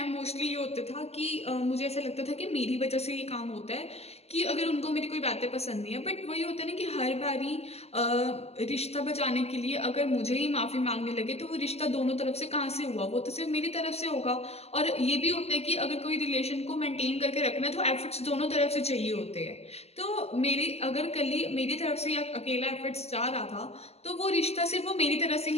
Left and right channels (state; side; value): late; right; 0.30 ms